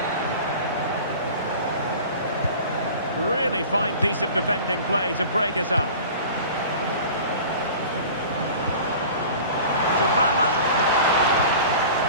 Really fine piece of defending play to break us up. Dybala.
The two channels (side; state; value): both; inverted; correlation -0.40